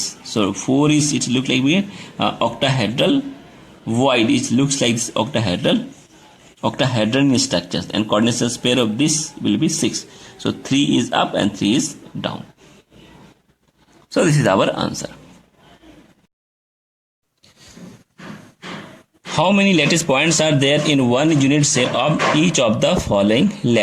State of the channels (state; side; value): identical; both; correlation 1.00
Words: so 4 is it look like we octahedral void, it looks like this octahedral structures, and coordination pair of this will be 6. So 3 is up and 3 is down. So this is our answer. How many lattice points are there in one unit cell of each of the following